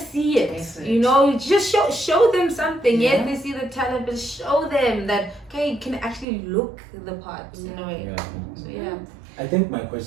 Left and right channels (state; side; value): drops out; left; at 6.2 s